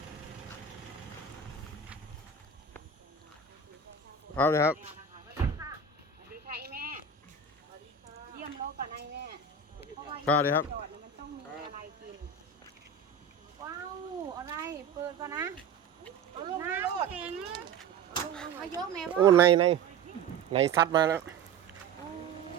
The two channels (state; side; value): quieter; left; 5.3 dB